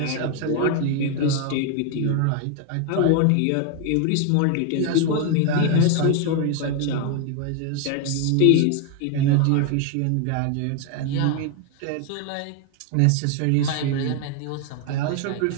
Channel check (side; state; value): both; different; correlation 0.00